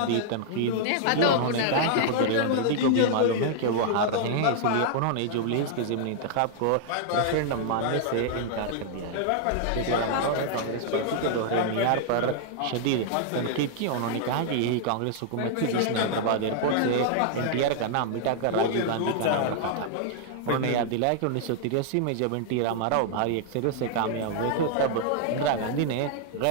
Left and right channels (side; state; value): both; different; correlation -0.01